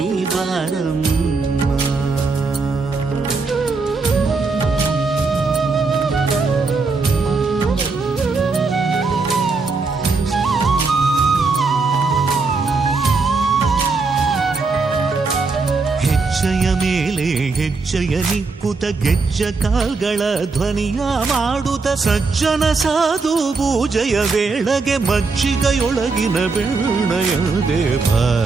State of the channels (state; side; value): quieter; left; 4.2 dB